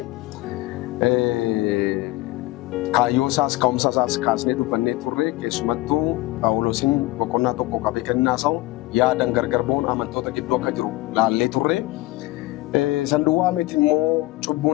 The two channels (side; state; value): right; quieter; 19.2 dB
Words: kaayyoo isaas ka'umsa isaas kaasnee dubbannee turre, keessumattuu Phaawulosiin boqonnaa tokko qabee kennaa isaa yaadan gargar ba'uun amantoota gidduu akka jiru laallee turre. Sanduuqaa miti immoo